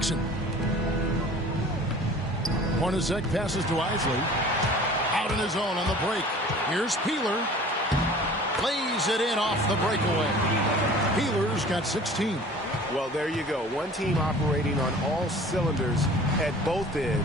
Hornacek passes to Isley. Out on his own on the break. Here's Peeler. Lays it in off the breakaway. Peeler's got 16. Well, there you go. One team operating on all cylinders at both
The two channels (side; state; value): both; normal; correlation 0.45